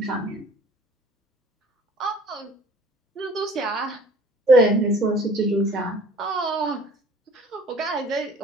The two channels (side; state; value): both; normal; correlation 0.50